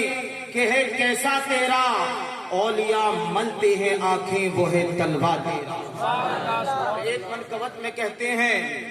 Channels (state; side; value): identical; both; correlation 1.00